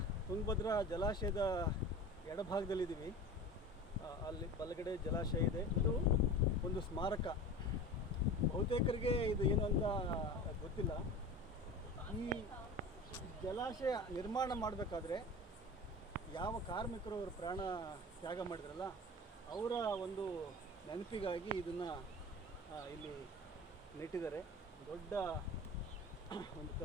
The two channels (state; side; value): normal; both; correlation 0.35